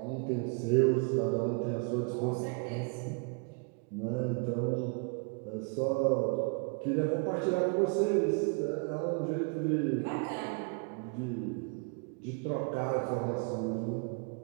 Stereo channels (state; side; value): quieter; left; 35.1 dB